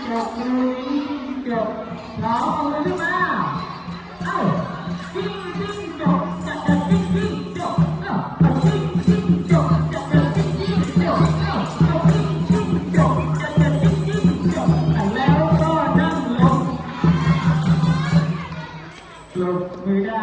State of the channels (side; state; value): both; identical; correlation 1.00